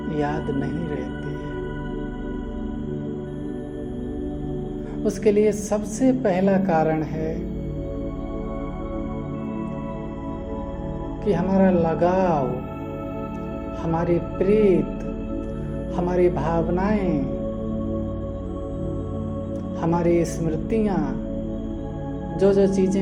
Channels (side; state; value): both; identical; correlation 1.00